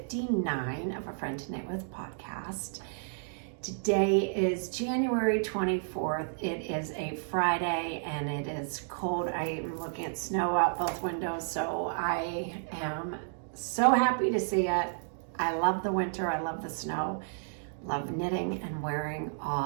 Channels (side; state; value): left; silent; digital silence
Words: of A Friend to Knit With podcast. Today is January 24th. It is a Friday and it is cold. I am looking at snow out both windows, so I am so happy to see it. I love the winter. I love the snow. Love knitting and wearing